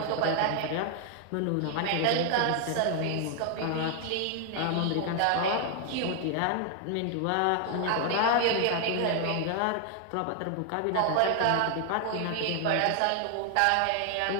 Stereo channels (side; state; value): both; different; correlation 0.00